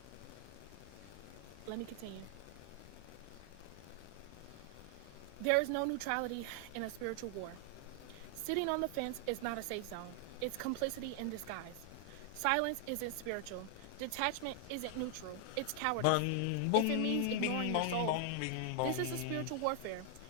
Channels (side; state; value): both; different; correlation 0.00